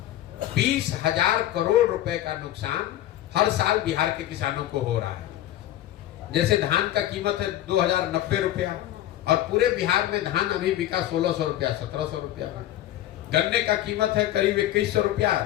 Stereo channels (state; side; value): quieter; right; 13.4 dB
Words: 20,000 करोड़ रुपए का नुकसान हर साल बिहार के किसानों को हो रहा है। जैसे धान का कीमत है 2,090 रुपया, और पूरे बिहार में धान अभी बिका 1,600 रुपया, 1,700 रुपया में। गन्ने का कीमत है करीब 2,100 रुपया,